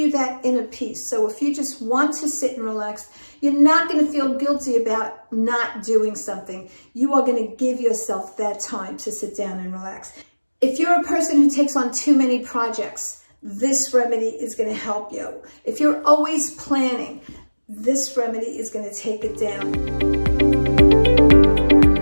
that inner peace. So if you just want to sit and relax, you're not going to feel guilty about not doing something. You are going to give yourself that time to sit down and relax. If you're a person who takes on too many projects, this remedy is going to help you. If you're always planning, this remedy is going to take it down.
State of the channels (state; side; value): inverted; both; correlation -1.00